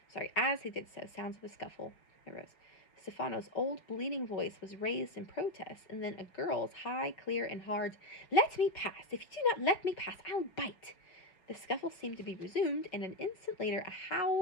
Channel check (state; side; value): late; right; 5.5 ms